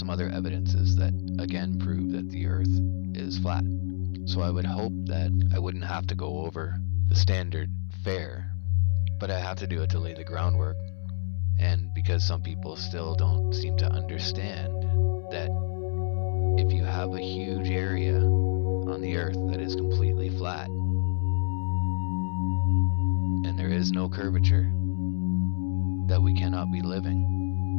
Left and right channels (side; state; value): right; silent; 60 dB below the other